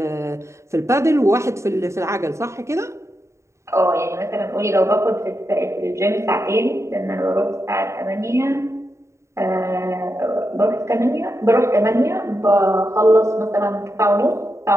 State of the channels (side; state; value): left; late; 0.14 ms